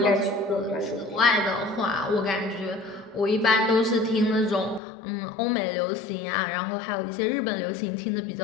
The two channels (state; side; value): drops out; right; at 4.8 s